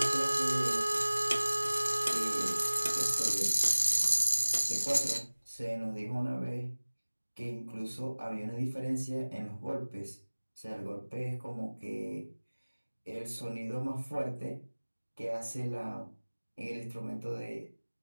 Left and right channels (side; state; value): both; inverted; correlation -1.00